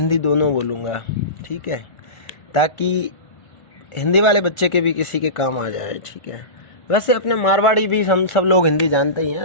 दोनों बोलूँगा, ठीक है, ताकि हिंदी वाले बच्चे के भी किसी के काम आ जाए, ठीक है। वैसे अपने मारवाड़ी भी हम सब लोग हिंदी जानते ही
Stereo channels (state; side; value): late; right; 1.4 ms